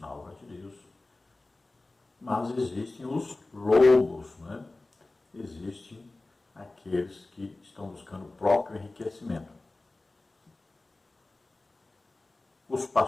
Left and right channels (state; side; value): quieter; right; 3.1 dB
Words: na obra de Deus, mas existem os lobos, né? Existem aqueles que estão buscando o próprio enriquecimento. Os